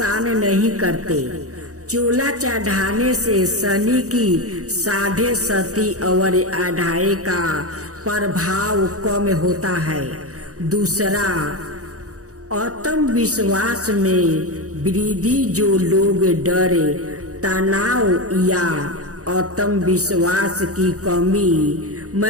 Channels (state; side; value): late; left; 0.66 ms